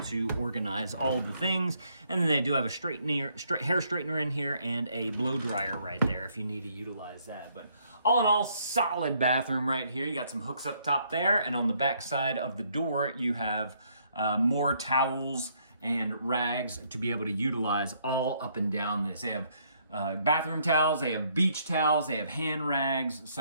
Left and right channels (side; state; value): both; inverted; correlation -0.69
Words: to organize all the things. And then they do have a hair straightener in here and a blow dryer right there if you need to utilize that. But all in all, solid bathroom right here. You got some hooks up top there, and on the back side of the door you have more towels and rags to be able to utilize all up and down this. They have bathroom towels, they have beach towels, they have hand rags,